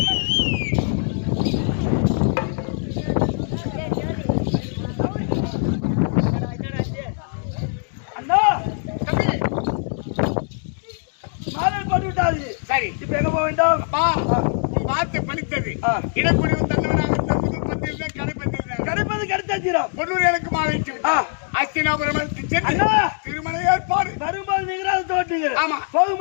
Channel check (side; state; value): right; silent; 64 dB below the other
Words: அண்ணா மாடல் போட்டு விட்டாது. சரி இப்ப எங்க போக வேண்டும்? அப்பா பார்த்து பணித்தது இடக்குடிவு தந்தவனாக கடைப்பது கிடைத்தாச்சிரம் பொன்னூர் எனக்கு மாலைக்கு விட்டா அஸ்தினாபுரம் திருமண ஏற்பாடு வரும்போது நீங்க தோட்டீங்க. ஆமா